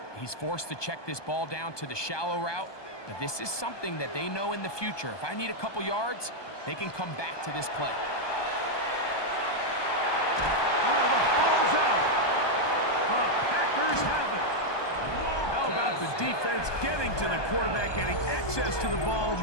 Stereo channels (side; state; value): right; late; 1.2 ms